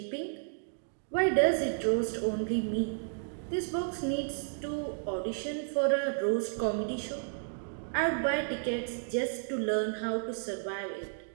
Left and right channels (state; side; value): silent; left; digital silence